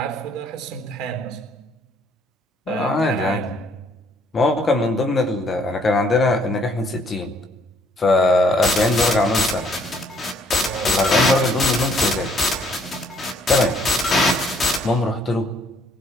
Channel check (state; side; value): normal; both; correlation 0.64